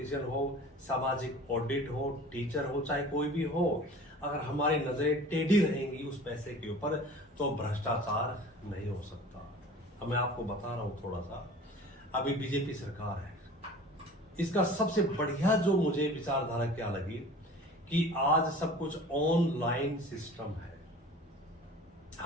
हो, सामाजिक ऑडिट हो, टीचर हो, चाहे कोई भी हो। अगर हमारी नजरें टेढ़ी रहेंगी उस पैसे के ऊपर तो भ्रष्टाचार नहीं हो सकता। अब मैं आपको बता रहा हूं थोड़ा सा, अभी बीजेपी सरकार है, इसका सबसे बढ़िया जो मुझे विचारधारा क्या लगी कि आज सब कुछ ऑनलाइन सिस्टम है।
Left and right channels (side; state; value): both; normal; correlation 0.42